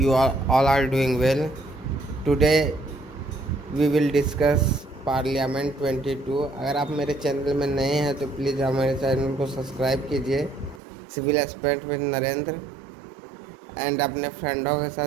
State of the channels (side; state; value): left; drops out; at 10.8 s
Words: all are doing well. Today we will discuss parliament 22। अगर आप मेरे channel में नए हैं तो प्लीज़ हमारे चैनल को सब्सक्राइब कीजिए, civil expert with Narendra, and अपने फ्रेंडों के